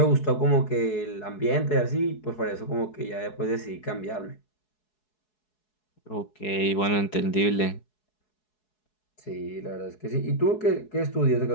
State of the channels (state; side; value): late; right; 4.7 ms